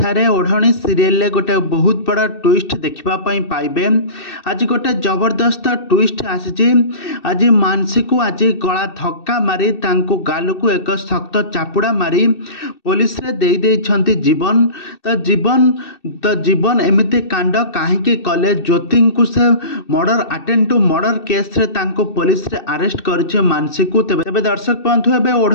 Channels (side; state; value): right; late; 2.6 ms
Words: ओढ़णी सीरियल गोटे बहुत बड़ा ट्विस्ट देखापी पाइबे। आज गोटे जबरदस्त ट्विस्ट आसी। आज मानसी को आज गला धक्का मारी गाल को एक शक्त चापुड़ा मारी पुलिस रे दे देइछंती जीवन। तो जीवन एमती कांड कहीं कले ज्योति को से murder attempt to murder case रे पुलिस रे अरेस्ट कर मानसी को। तेबे दर्शक बंधु एबे